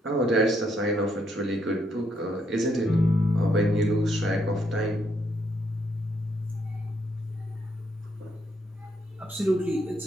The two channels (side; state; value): both; normal; correlation 0.74